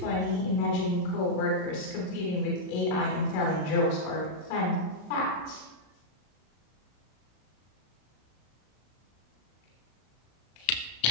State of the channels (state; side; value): late; right; 33 ms